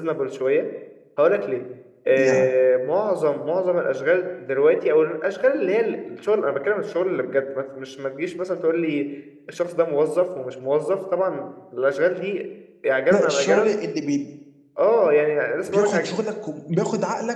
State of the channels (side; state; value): both; identical; correlation 1.00